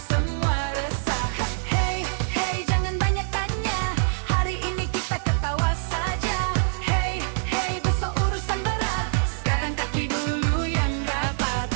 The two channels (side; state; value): left; silent; 62 dB below the other